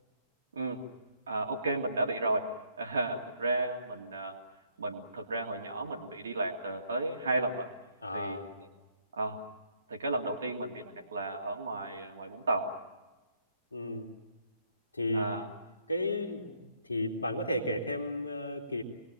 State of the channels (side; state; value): both; inverted; correlation -0.70